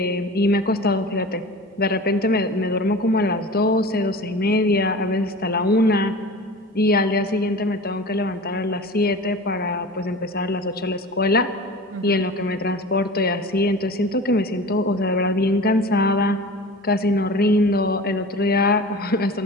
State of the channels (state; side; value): normal; both; correlation 0.36